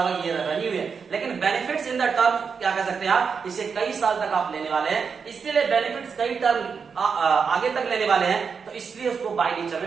होगा ये रेवेन्यू है। लेकिन बेनिफिट्स इन द टर्म क्या कह सकते हैं आप, इसे कई साल तक आप लेने वाले हैं, इसलिए बेनिफिट्स कई टर्म आगे तक लेने वाले हैं, तो इसलिए उसको बाय नेचर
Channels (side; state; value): left; quieter; 5.9 dB